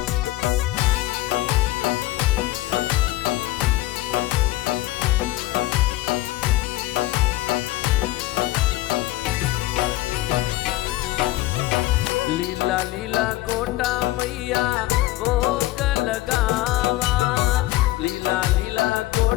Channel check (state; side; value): quieter; right; 17.0 dB